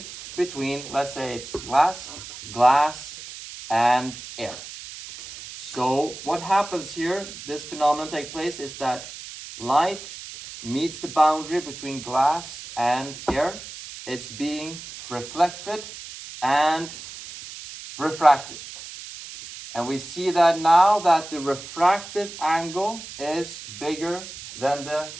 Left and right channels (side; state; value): right; noise; hiss, 13 dB below the sound